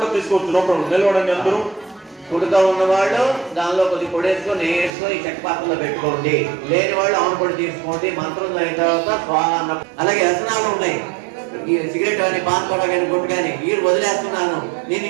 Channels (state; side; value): drops out; left; at 4.9 s